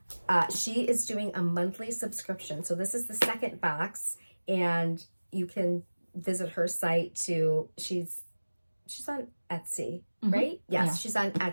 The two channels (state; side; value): inverted; both; correlation -1.00